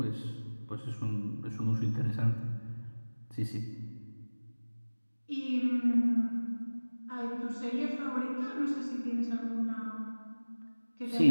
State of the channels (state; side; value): inverted; both; correlation -1.00